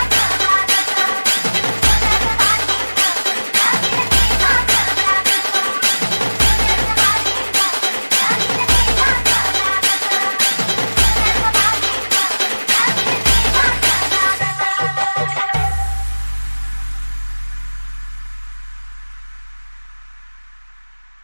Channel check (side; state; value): both; inverted; correlation -1.00